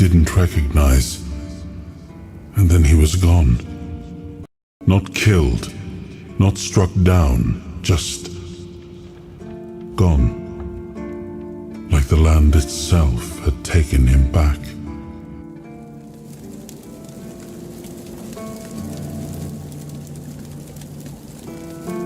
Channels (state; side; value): identical; both; correlation 1.00